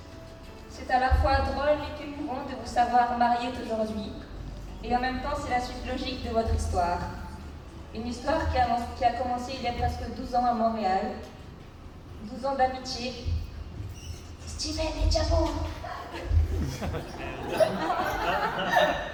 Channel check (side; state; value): both; identical; correlation 1.00